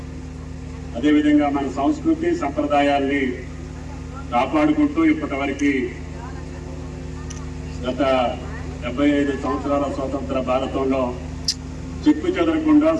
అదేవిధంగా మన సంస్కృతి సంప్రదాయాల్ని కాపాడుకుంటూ ఇప్పటివరకు గత 75 సంవత్సరాల స్వతంత్ర భారతంలో చెక్కు చెదరకుండా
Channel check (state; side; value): identical; both; correlation 1.00